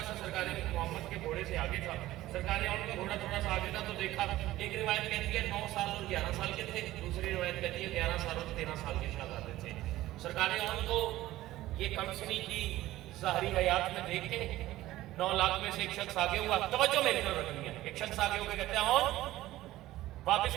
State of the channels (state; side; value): quieter; left; 15.9 dB